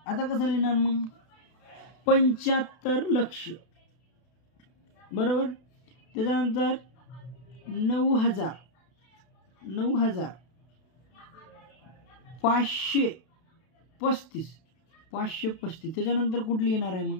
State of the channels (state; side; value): late; right; 32 ms